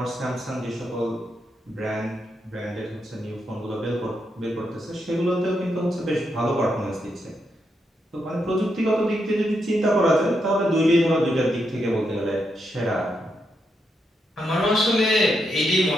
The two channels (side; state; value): both; normal; correlation 0.82